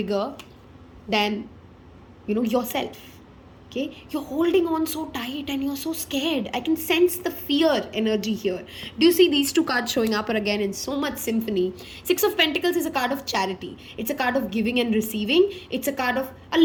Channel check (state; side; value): identical; both; correlation 1.00